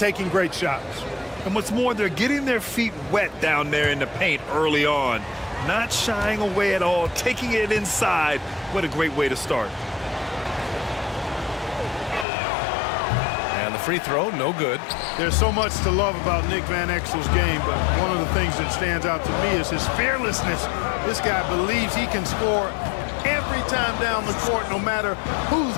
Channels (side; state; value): right; drops out; at 12.2 s